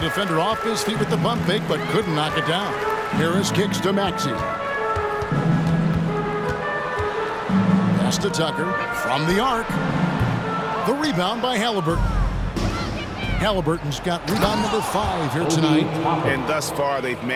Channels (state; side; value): identical; both; correlation 1.00